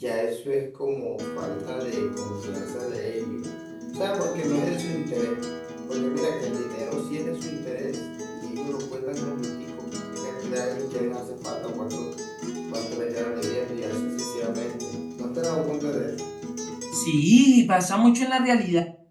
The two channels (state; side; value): identical; both; correlation 1.00